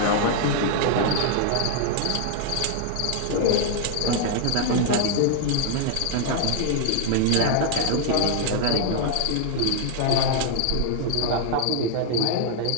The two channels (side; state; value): both; different; correlation 0.00